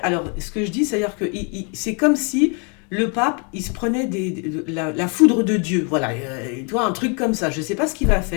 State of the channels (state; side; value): quieter; right; 35.9 dB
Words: ce que je dis, c'est-à-dire que c'est comme si le pape, il se prenait la foudre de Dieu. Voilà, tu vois, un truc comme ça. Je ne sais pas ce qu'il va